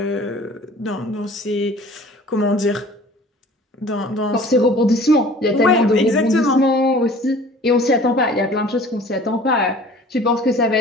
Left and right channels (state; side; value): normal; both; correlation 0.47